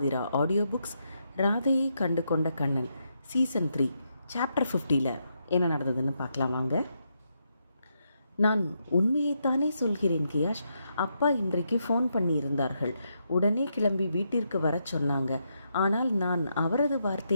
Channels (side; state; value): both; inverted; correlation -0.81